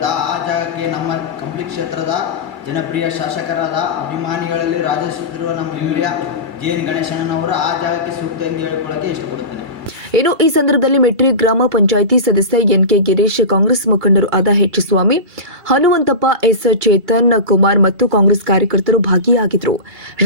ಆ ಜಾಗಕ್ಕೆ ನಮ್ಮ ಕಂಪ್ಲಿ ಕ್ಷೇತ್ರದ ಜನಪ್ರಿಯ ಶಾಸಕರಾದ ಅಭಿಮಾನಿಗಳಲ್ಲಿ ರಾಜಿಸುತ್ತಿರುವ ನಮ್ಮ ಹಿರಿಯ JN ಗಣೇಶಣ್ಣನವರು ಆ ಜಾಗಕ್ಕೆ ಸೂಕ್ತ ಎಂದು ಹೇಳಿಕೊಳ್ಳಕ್ಕೆ ಇಷ್ಟಪಡುತ್ತೇನೆ. ಇನ್ನು ಈ ಸಂದರ್ಭದಲ್ಲಿ ಮೆಟ್ರಿ ಗ್ರಾಮ ಪಂಚಾಯಿತಿ ಸದಸ್ಯ NK ಗಿರೀಶ್, ಕಾಂಗ್ರೆಸ್ ಮುಖಂಡರು ಆದ H ಸ್ವಾಮಿ, ಹನುಮಂತಪ್ಪ, S ಚೇತನ್ ಕುಮಾರ್ ಮತ್ತು ಕಾಂಗ್ರೆಸ್ ಕಾರ್ಯಕರ್ತರು ಭಾಗಿಯಾಗಿದ್ದರು.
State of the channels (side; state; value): left; late; 2.2 ms